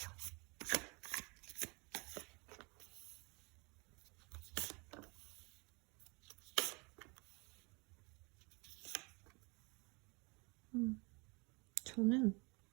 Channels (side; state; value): left; quieter; 29.3 dB